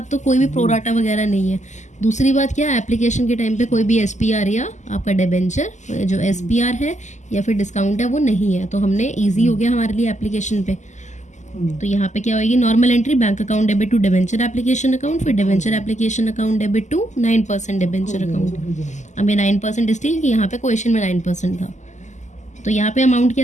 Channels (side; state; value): right; late; 0.34 ms